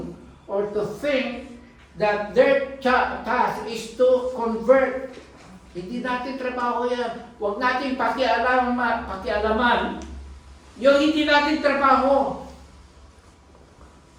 or to think that their task is to convert. Hindi natin trabaho yan. Huwag natin pakialaman yung hindi natin trabaho.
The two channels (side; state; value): both; identical; correlation 1.00